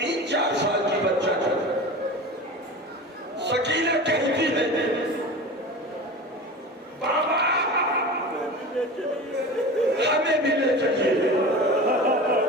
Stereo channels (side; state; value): both; normal; correlation 0.32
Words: साल की बच्चा था। सकीना कहती है, बाबा हमें भी ले चलिए।